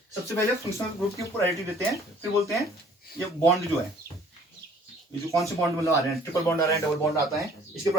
सबसे पहले फंक्शनल ग्रुप की प्रायोरिटी देते हैं, फिर बोलते हैं ये बॉन्ड जो है, ये जो कौन से बॉन्ड मतलब आ रहे हैं, ट्रिपल बॉन्ड आ रहा है, डबल बॉन्ड आता है, इसकी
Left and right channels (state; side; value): normal; both; correlation 0.56